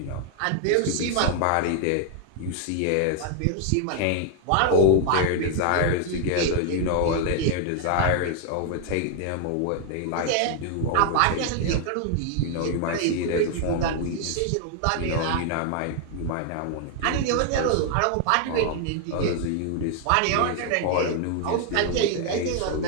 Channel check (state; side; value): different; both; correlation 0.00